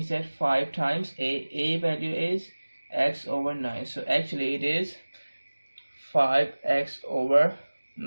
that 5 times A value is X over 9. So actually it is 5X over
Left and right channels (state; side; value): inverted; both; correlation -1.00